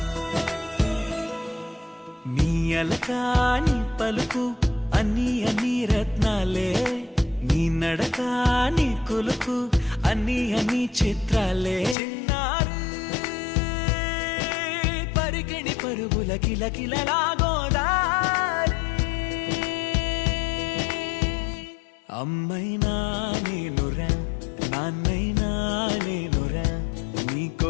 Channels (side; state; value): right; drops out; at 12.0 s